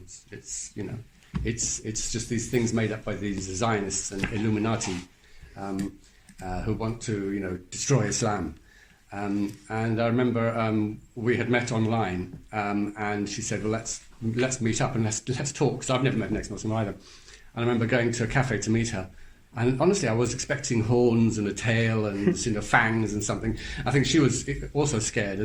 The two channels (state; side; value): identical; both; correlation 1.00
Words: It's just these things made up by these Zionists and Illuminati who want to, destroy Islam. And I remember we had met online, and she said, well, let's meet up and let's talk, because I've never met an ex-Muslim either. And I remember going to a cafe to meet her. And honestly, I was expecting horns and a tail and fangs and something. I think she was also scared